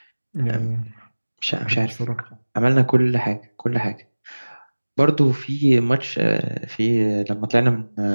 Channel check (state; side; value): inverted; both; correlation -1.00